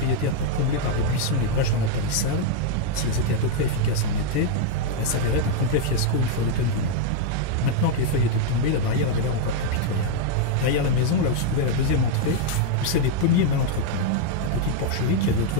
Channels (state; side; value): different; both; correlation 0.00